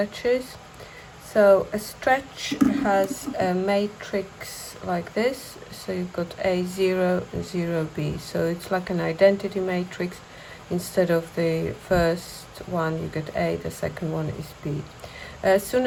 So a stretch has a matrix like this. So you've got A0 and 0B. So it's like an identity matrix. Instead of the first one you get A, the second one is B. As soon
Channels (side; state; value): both; identical; correlation 1.00